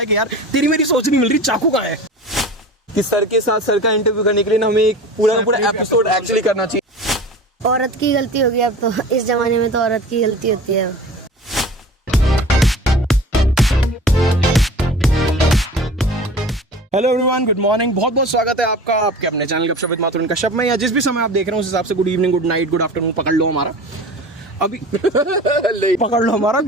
कि यार तेरी मेरी सोच नहीं मिल रही, चाकू कहाँ है। कि सर के साथ सर का इंटरव्यू करने के लिए ना हमें एक पूरा एपिसोड एक्चुअली करना चाहिए। औरत की गलती होगी अब तो, इस जमाने में तो औरत की गलती होती है। हेलो एवरीवन, गुड मॉर्निंग, बहुत बहुत स्वागत है आपका आपके अपने चैनल गपशप विद माथुर कश्यप में, या जिस भी समय आप देख रहे हो उस हिसाब से good evening, good night, good afternoon पकड़ लो हमारा अभी पकड़ लो हमारा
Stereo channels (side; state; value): both; normal; correlation 0.37